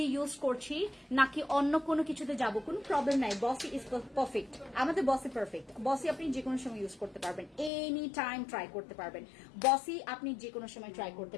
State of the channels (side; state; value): right; drops out; at 7.7 s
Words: ইউজ করছি নাকি অন্য কোনো কিছুতে যাব, কোনো প্রবলেম নাই। বসি ইজ পারফেক্ট, আমাদের বসি পারফেক্ট। বসি আপনি যে কোনো সময় ইউজ করতে পারবেন, এনি টাইম ট্রাই করতে পারবেন। বসি আপনি যে কোনো সময় ট্রাই করতে